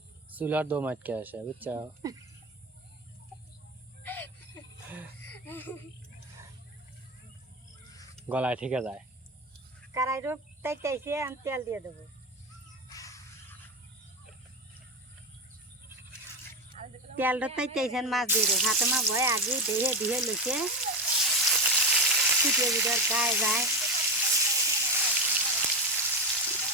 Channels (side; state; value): both; normal; correlation 0.15